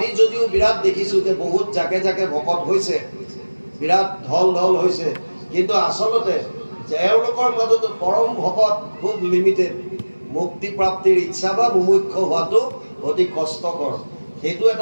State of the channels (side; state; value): both; inverted; correlation -1.00